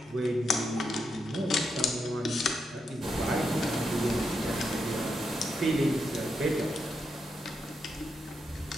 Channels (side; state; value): both; normal; correlation 0.83